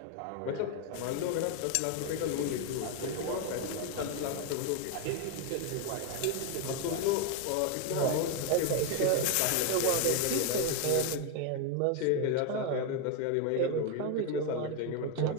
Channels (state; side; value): different; both; correlation 0.01